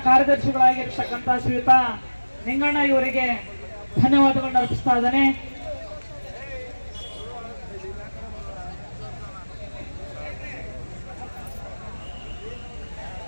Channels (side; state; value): both; inverted; correlation -1.00